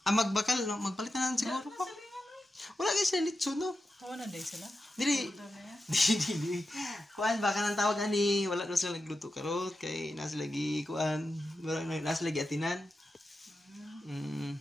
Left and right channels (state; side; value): normal; both; correlation 0.90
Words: Magbakal. No? Magpalitan na siguro ko. Wala kayo sila litso, no? Hawa na day sila. Dili. Dili. Kuan, baka nang tawag ani. Wala na sila nagluto karot. Kay nasa lagi, kuan. Nasa lagi atinan.